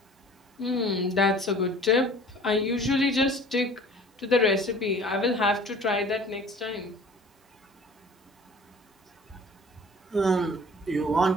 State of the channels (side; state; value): both; normal; correlation 0.48